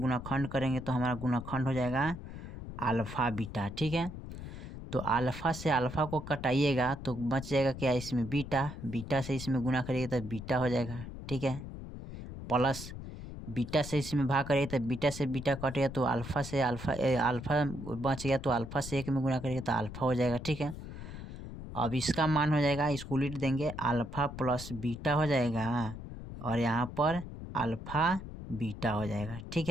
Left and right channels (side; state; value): left; noise; rumble, 10 dB below the sound